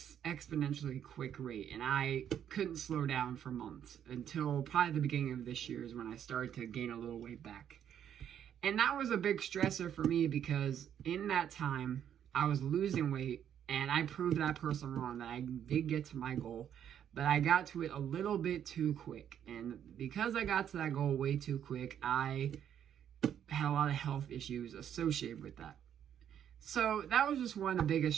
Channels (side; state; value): left; quieter; 9.5 dB